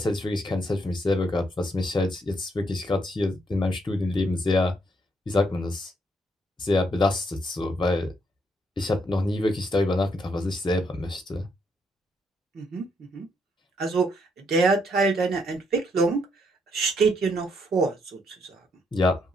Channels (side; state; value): both; normal; correlation 0.74